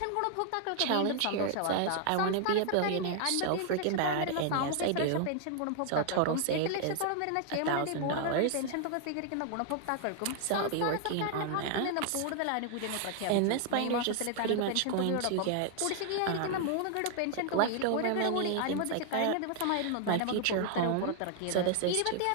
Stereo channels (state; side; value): different; both; correlation 0.00